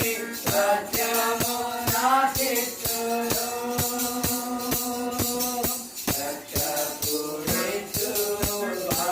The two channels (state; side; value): identical; both; correlation 1.00